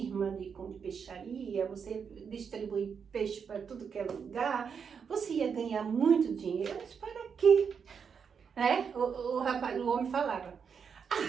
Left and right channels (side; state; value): left; quieter; 6.5 dB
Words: de peixaria, você distribui peixe para tudo que é lugar, você ia ganhar muito dinheiro. Mas para quê? Né? O homem falava: